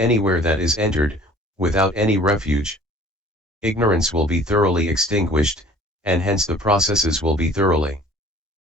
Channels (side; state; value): both; normal; correlation 0.50